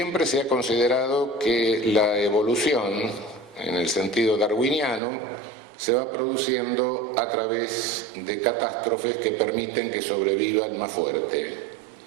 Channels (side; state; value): left; drops out; at 5.0 s